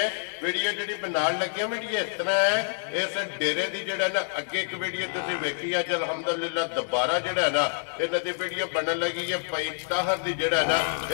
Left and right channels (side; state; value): right; silent; digital silence